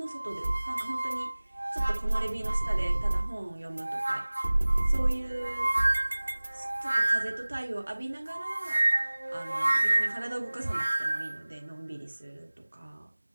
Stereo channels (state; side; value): inverted; both; correlation -1.00